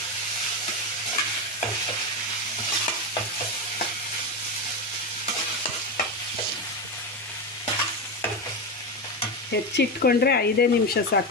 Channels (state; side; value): normal; both; correlation 0.15